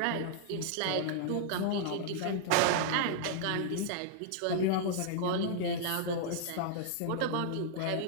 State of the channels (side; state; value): both; different; correlation -0.01